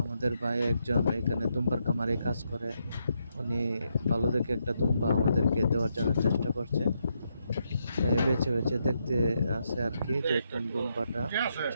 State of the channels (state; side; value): inverted; both; correlation -0.80